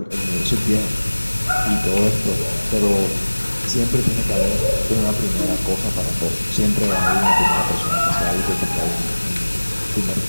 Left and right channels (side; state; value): both; inverted; correlation -1.00